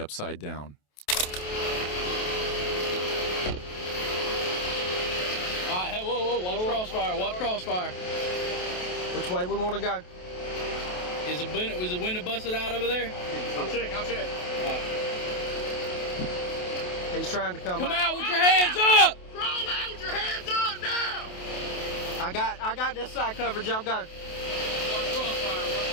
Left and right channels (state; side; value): late; right; 28 ms